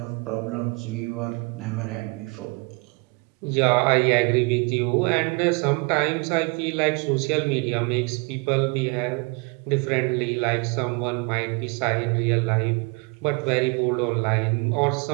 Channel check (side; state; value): left; quieter; 30.7 dB